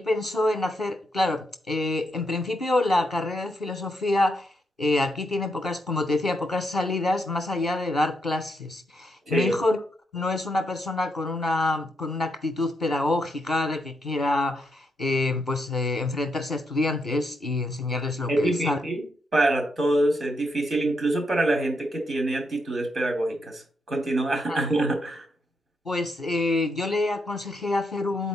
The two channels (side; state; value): both; normal; correlation 0.80